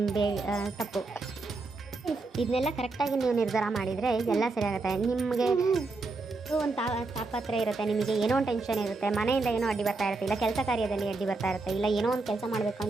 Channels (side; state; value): left; quieter; 3.6 dB